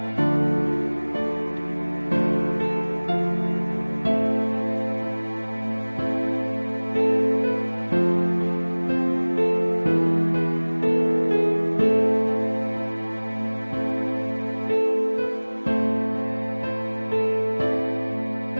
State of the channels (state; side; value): inverted; both; correlation -1.00